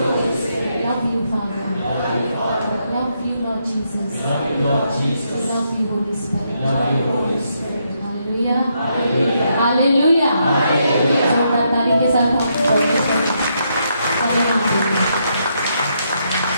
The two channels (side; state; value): both; inverted; correlation -0.78